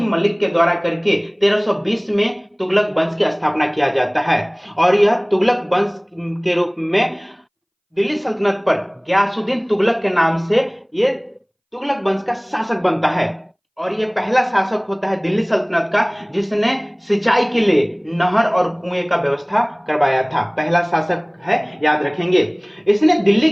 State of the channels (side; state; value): both; identical; correlation 1.00